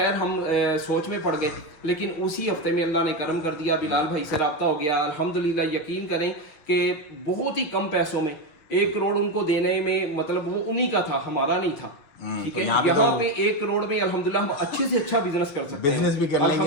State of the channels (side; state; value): right; late; 6.5 ms